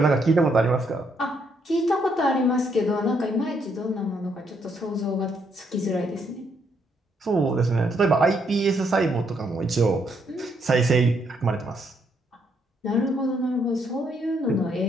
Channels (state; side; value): normal; both; correlation 0.73